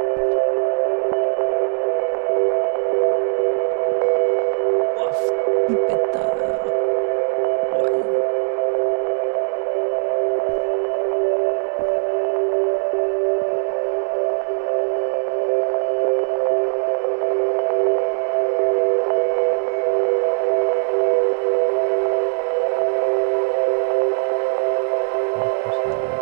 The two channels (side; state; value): left; silent; digital silence